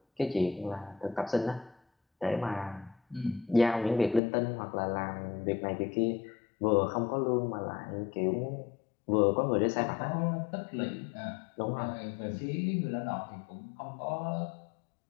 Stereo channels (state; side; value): drops out; right; at 4.2 s